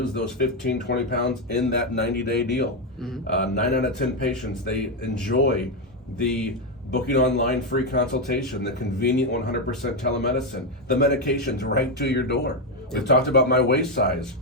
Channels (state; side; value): normal; both; correlation 0.06